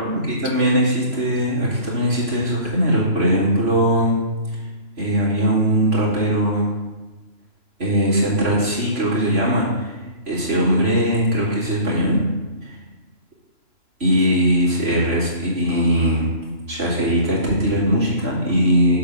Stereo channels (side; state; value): left; late; 3.0 ms